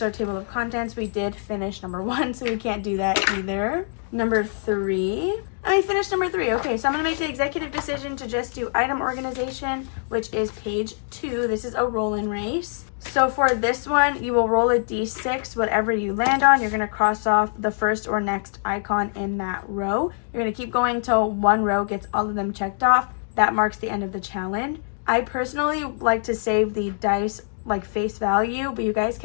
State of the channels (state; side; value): silent; right; digital silence